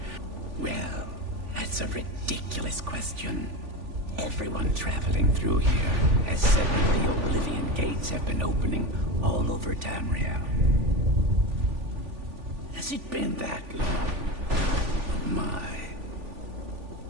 Well, that's a ridiculous question. Everyone traveling through here has said that the Oblivion Gates have been opening all over Tamriel. Has it been that long? Oh my.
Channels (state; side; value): late; left; 3.5 ms